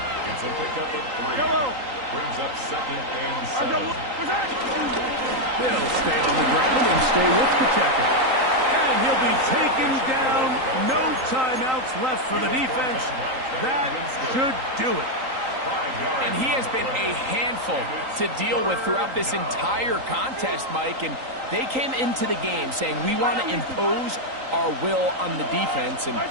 It's a pickup of 3. Brings up second and 7. They'll stay on the ground and stay with Pacheco. And he'll be taken down. No timeouts left for the defense. That should do it. And he has been a handful to deal with throughout this entire contest, Mike. And they came into the game saying, we want to impose our will on the defense. And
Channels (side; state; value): left; late; 3.9 ms